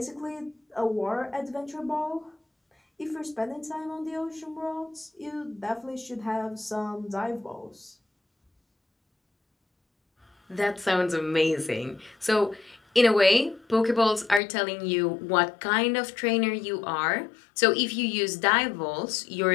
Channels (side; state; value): right; drops out; at 14.4 s